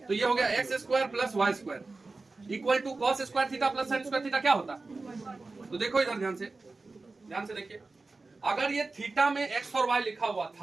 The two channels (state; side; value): quieter; left; 3.6 dB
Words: तो ये हो गया x square plus y square equal to cos square theta plus sine square theta. क्या होता है? तो देखो इधर ध्यान से, ध्यान से देखिए, अगर ये थीटा में एक्स और वाई लिखा हुआ